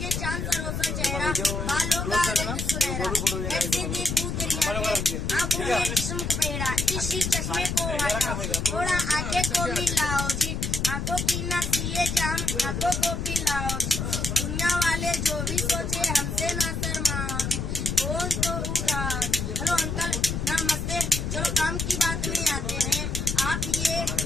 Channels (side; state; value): left; noise; rumble, 2 dB below the sound